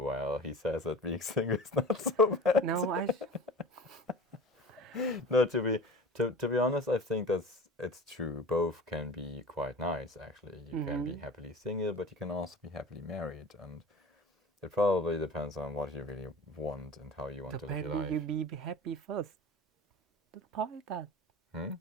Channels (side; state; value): both; normal; correlation 0.37